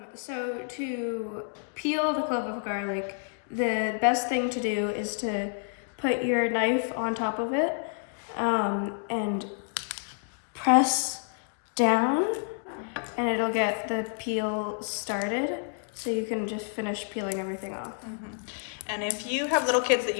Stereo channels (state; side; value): silent; right; 59 dB below the other